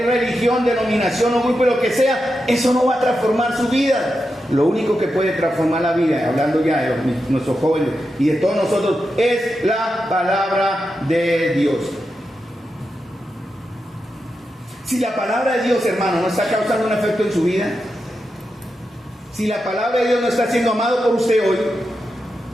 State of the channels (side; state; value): both; normal; correlation 0.88